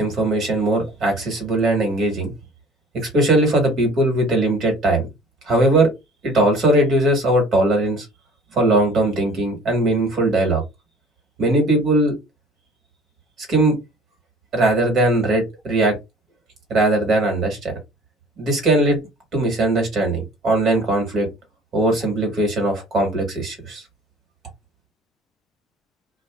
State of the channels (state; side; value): normal; both; correlation 0.48